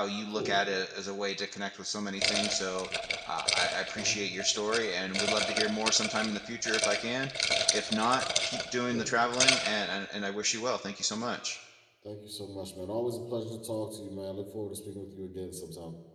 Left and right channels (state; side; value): identical; both; correlation 1.00